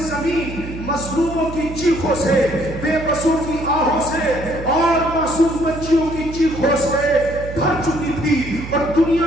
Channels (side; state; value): right; noise; hum, 10 dB below the sound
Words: زمین مظلوموں کی چیخوں سے، بے بسوں کی آہوں سے اور معصوم بچیوں کی چیخوں سے بھر چکی تھی اور